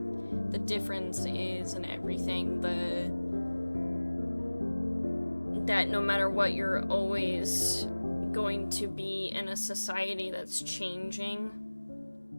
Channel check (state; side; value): inverted; both; correlation -1.00